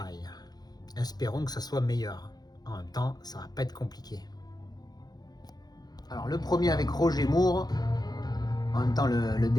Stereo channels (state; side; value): late; right; 0.19 ms